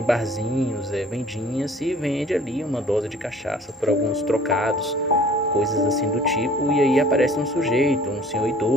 barzinhos, vendinhas, e vende ali uma dose de cachaça por alguns trocados, coisas assim do tipo, e aí aparece um sujeito, um senhor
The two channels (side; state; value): both; normal; correlation 0.51